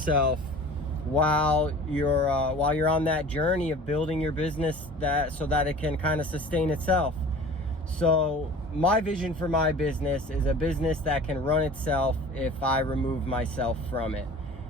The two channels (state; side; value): normal; both; correlation 0.42